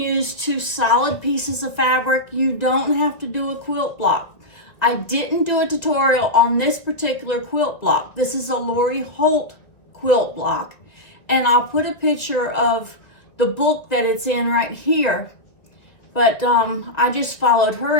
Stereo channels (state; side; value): late; right; 1.7 ms